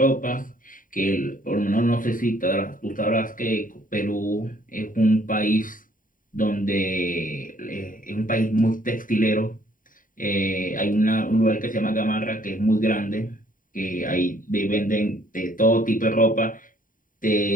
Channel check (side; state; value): right; late; 0.39 ms